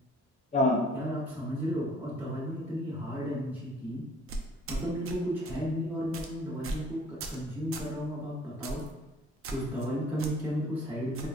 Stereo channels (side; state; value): both; normal; correlation 0.54